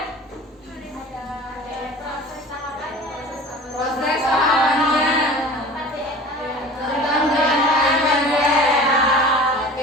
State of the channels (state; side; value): normal; both; correlation 0.40